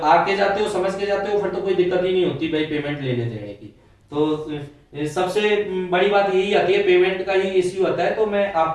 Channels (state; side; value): identical; both; correlation 1.00